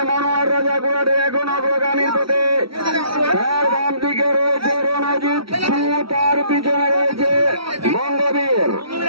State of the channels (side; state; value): left; late; 0.75 ms